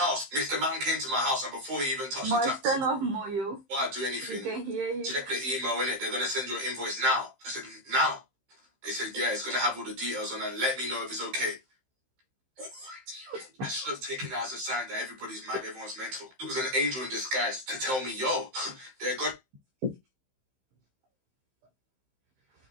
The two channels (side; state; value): left; late; 15 ms